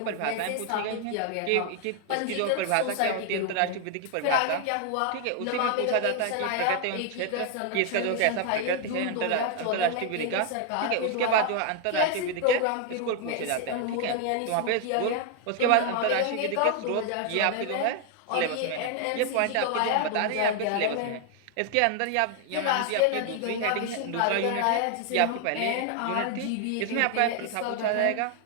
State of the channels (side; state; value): both; different; correlation 0.00